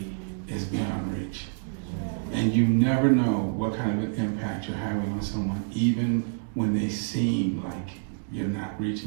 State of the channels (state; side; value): silent; left; digital silence